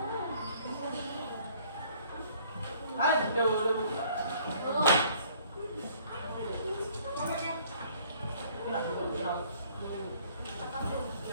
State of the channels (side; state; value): both; inverted; correlation -0.58